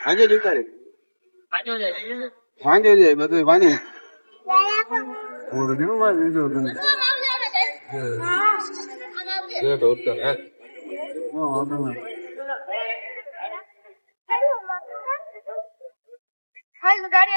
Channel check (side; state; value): both; inverted; correlation -1.00